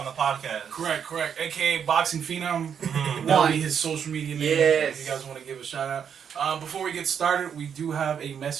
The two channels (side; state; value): left; quieter; 7.8 dB